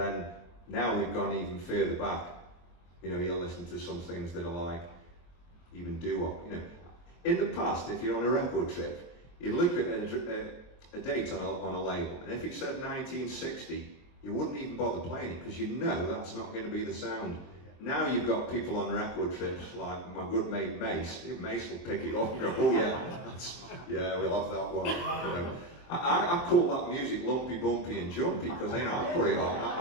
now we've gone even further back. You know, you'll listen to some things that are like even doo-wop. You know, in the past, if you're on a record trip, you'd look at a date on a label, and if it said 1960, you wouldn't even bother playing it because you know that's not going to be the sound. Now you've got people on record trips like my good mate Mace. Mace will pick it up and go, oh yeah, we'll have that one. You know. I call that music lumpy, bumpy and jumpy because I put it on.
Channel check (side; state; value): right; late; 23 ms